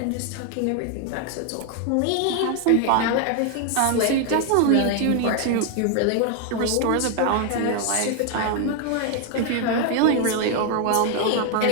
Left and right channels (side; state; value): both; different; correlation 0.00